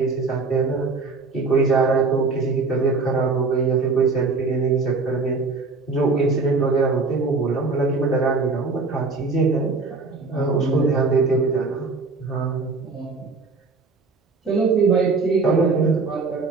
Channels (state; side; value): quieter; left; 4.0 dB